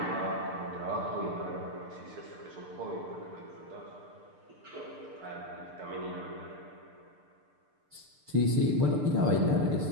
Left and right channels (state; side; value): late; left; 6.7 ms